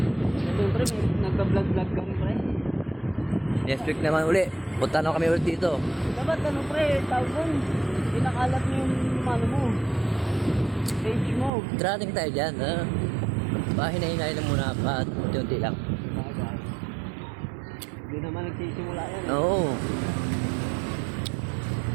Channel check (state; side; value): drops out; left; at 11.5 s